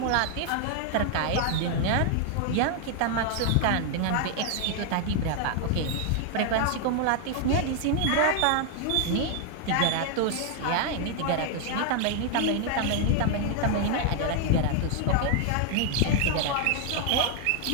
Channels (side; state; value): both; different; correlation 0.00